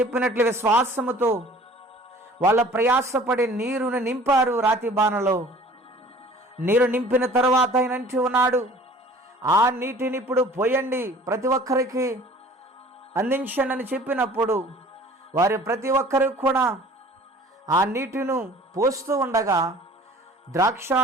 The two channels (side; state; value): both; normal; correlation 0.48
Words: విశ్వాసముతో వాళ్ళ ప్రయాసపడి నీరును నింపారు. రాతి బాణలో నీరు నింపిన తర్వాత ఆయన అంటూ ఉన్నాడు, ఆ నీటిని ఇప్పుడు పోయండి, ప్రతి ఒక్కరికి అందించండి అని చెప్పినప్పుడు వారి ప్రతి ఒక్కరికి కూడా ఆ నీటిని పోస్తూ ఉండగా